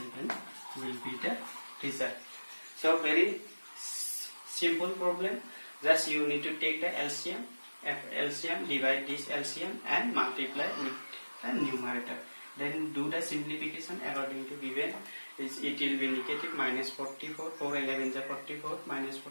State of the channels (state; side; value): inverted; both; correlation -1.00